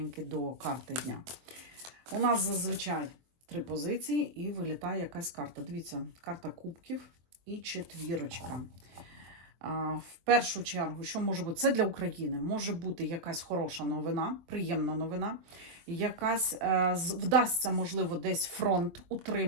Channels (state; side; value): late; left; 23 ms